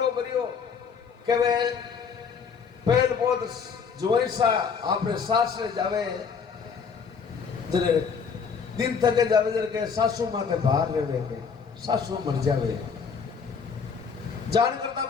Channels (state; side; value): quieter; right; 5.9 dB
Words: करियो के वे पहल बहुत जोईसा आपने सास से जावे जरे दिन थके जावे जरे के सासू माथे बाहर रहे के सासू मर जावे जान करता